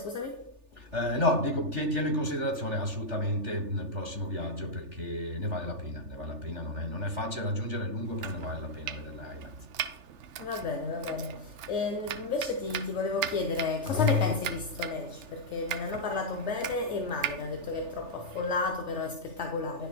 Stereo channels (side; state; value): left; late; 3.4 ms